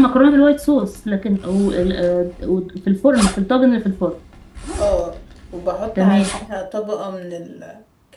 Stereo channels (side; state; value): both; identical; correlation 1.00